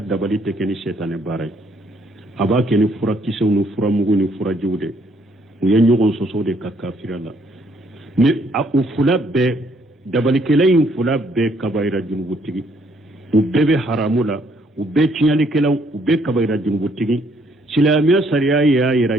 dabali tekeni shaytane baray aba keni fura kisewnu fura muguni fura juude u ye ɲɔgɔn sɔsɔ de ka kafira la mais u fula bɛɛ dabalikɛla in fula bɛɛ kabayira junubutigi u bɛɛ bɛ haramu la u bɛɛ tiɲalikɛlaw u bɛɛ kabayira junubutigi silamɛya sariya y'a yira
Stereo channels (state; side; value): normal; both; correlation 0.67